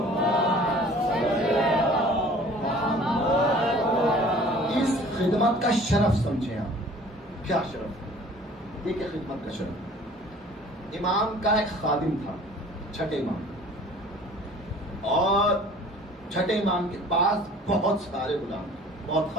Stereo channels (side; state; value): both; normal; correlation 0.49